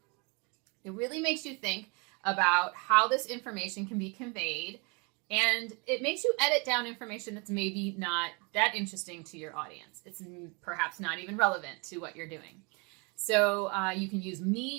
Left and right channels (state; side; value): quieter; left; 30.9 dB